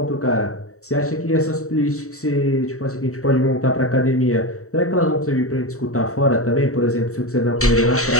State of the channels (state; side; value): late; right; 0.64 ms